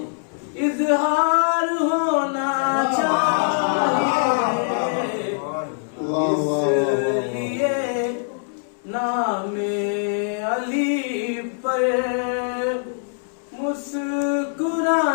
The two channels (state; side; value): silent; right; 64 dB below the other